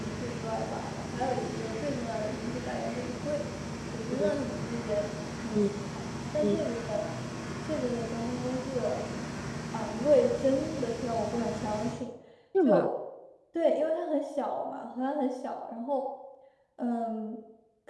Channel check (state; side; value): identical; both; correlation 1.00